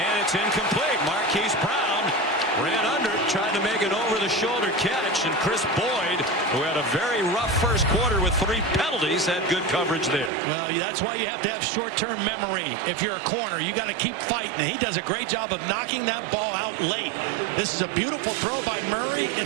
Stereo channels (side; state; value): left; drops out; at 10.3 s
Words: it's incomplete. Marquise Brown ran under it, tried to make an over-the-shoulder catch, and Chris Boyd, who had a very rough first quarter with 3 penalties, had good coverage there. Well, that's why you have to have short-term memory. If you're a corner, you got to keep fighting. He does a great job of knocking that ball out late. This is a beautiful throw by Murray.